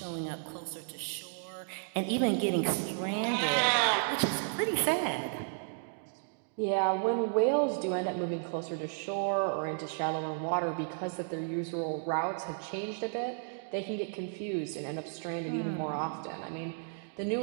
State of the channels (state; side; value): silent; left; digital silence